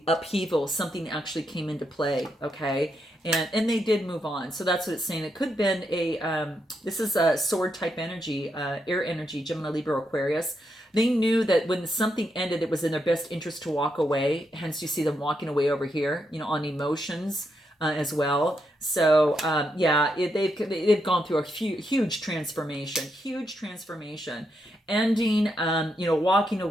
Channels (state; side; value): normal; both; correlation 0.81